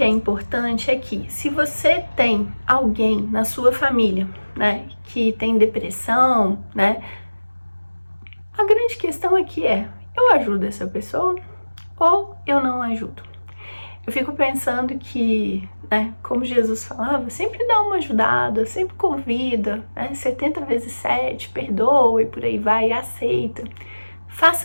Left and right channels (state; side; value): inverted; both; correlation -1.00